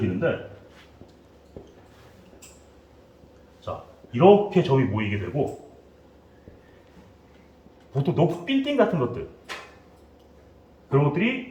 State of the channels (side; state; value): both; identical; correlation 1.00